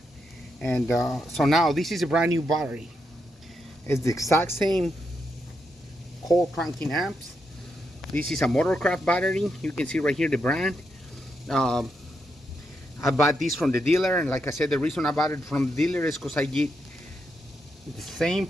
And so now this is a brand new battery. It's the exact same coil cranking amps. This is a Motorcraft battery. You can see right here the brand. I bought this from the dealer, and like I said, the reason I bought it from the dealer is because I get the same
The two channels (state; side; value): normal; both; correlation 0.82